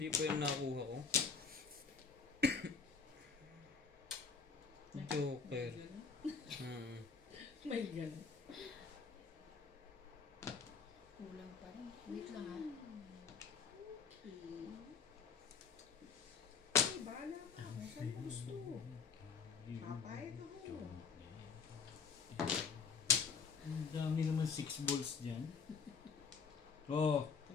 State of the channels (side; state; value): right; quieter; 5.5 dB